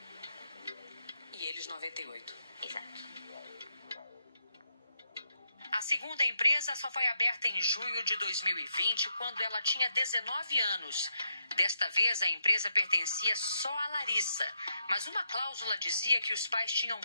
E eles 98%. Exato. A segunda empresa só foi aberta em junho de 2020, quando ela tinha 19 anos. Desta vez, a empresa pertencia só a Larissa, mas uma cláusula dizia que os pais tinham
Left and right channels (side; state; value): both; inverted; correlation -0.81